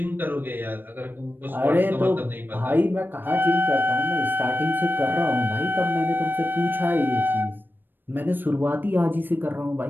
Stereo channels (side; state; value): left; late; 0.094 ms